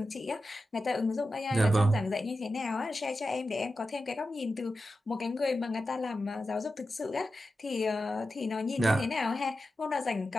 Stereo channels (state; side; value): normal; both; correlation 0.92